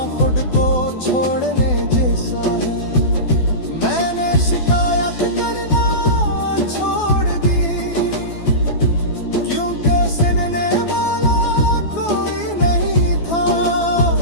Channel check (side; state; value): right; late; 12 ms